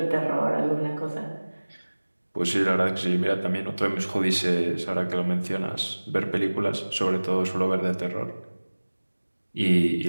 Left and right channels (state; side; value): inverted; both; correlation -1.00